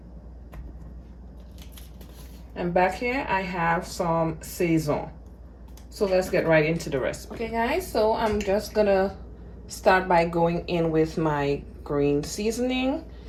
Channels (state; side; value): identical; both; correlation 1.00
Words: and back here I have some sazon. So let's get right into the recipe. Okay guys, so I'm just gonna start by going in with my green seasoning.